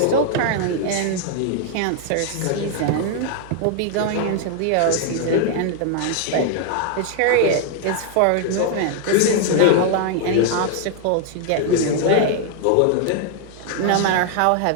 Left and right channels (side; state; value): both; different; correlation 0.00